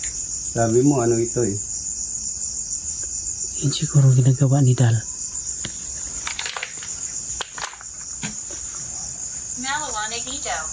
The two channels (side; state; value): both; identical; correlation 1.00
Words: Sabi mo, ano ito eh? Yun siguro ginagawa ni Dal. Malawanag Ito.